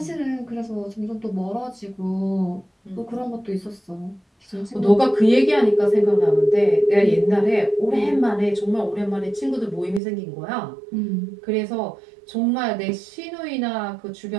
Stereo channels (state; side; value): drops out; left; at 10.0 s